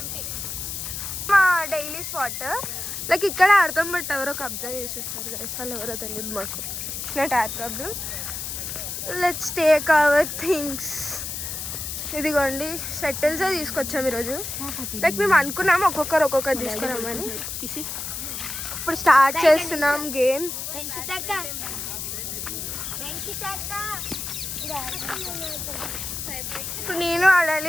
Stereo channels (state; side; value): noise; left; hiss, 5 dB below the sound